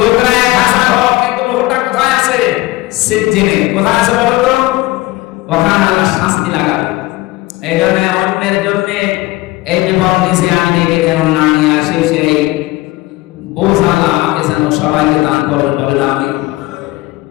1000 হোক, কিন্তু লোকটা কোথায় আছে? সিজ্জিনে। কোথায় আছে বলো তো? ওখানে আল্লাহ শাস্তি লাগাবে। এই জন্য অন্যের জন্য এই বিপদ নিচে আমি ডেকে যেন না নিয়ে আসি, সেই বোঝা আমাকে যেন সবাইকে দান করেন, বলেন আমি।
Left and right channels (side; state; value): right; quieter; 19.1 dB